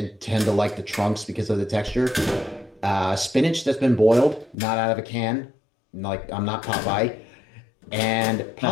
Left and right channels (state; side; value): drops out; right; at 4.5 s